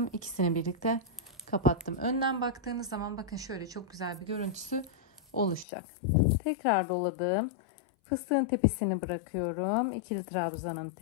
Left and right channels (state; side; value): drops out; right; at 5.7 s